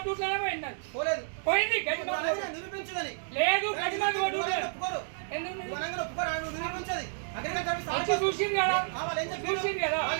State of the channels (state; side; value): silent; left; digital silence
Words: పోయింది అది పోయింది గడ్డి మంది లేదు గడ్డి మంది కొట్టుట్లేదు వచ్చి చూసింది కదా చూసింది కదా